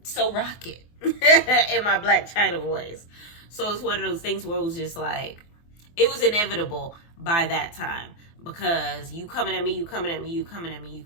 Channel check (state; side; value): late; right; 24 ms